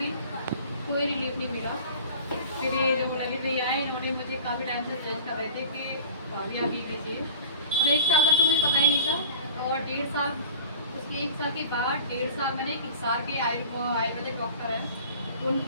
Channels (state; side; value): inverted; both; correlation -0.41